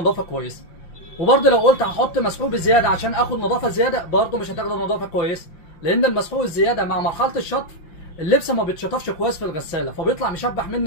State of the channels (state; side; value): late; right; 5.8 ms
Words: كويسه. وبرضه لو قلت هحط مسحوق بزياده عشان اخد نظافه زياده برضه مش هتاخد نظافه كويسه، لان المسحوق الزياده مع مرحله الشطف اللبس ما بيتشطفش كويس في الغساله، فبيطلع مشبح